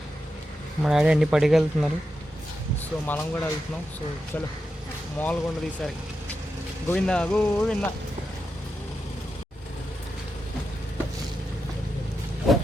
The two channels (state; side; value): normal; both; correlation 0.88